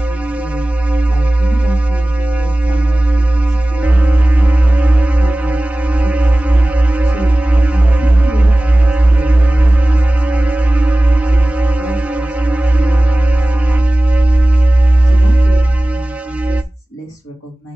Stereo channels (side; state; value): both; normal; correlation 0.97